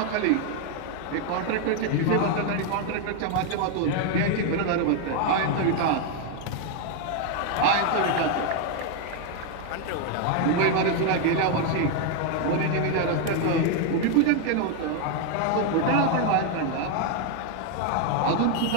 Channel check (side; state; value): both; different; correlation 0.01